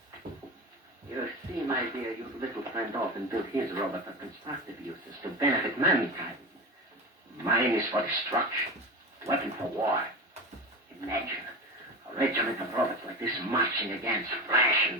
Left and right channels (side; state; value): both; normal; correlation 0.25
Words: You see, my dear, your little friend often built his robot for constructive uses to benefit mankind. Mine is for destruction, weapon for war. Imagine a regiment of robots like this marching against flesh